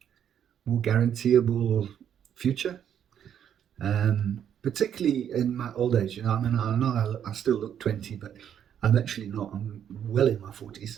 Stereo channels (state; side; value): quieter; left; 9.2 dB